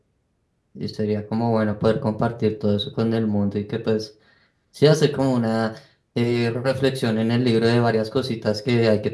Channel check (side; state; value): both; identical; correlation 1.00